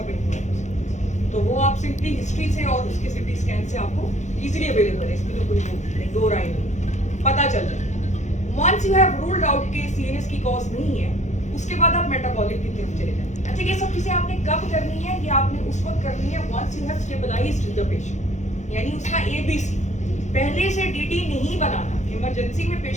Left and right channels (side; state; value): right; late; 0.34 ms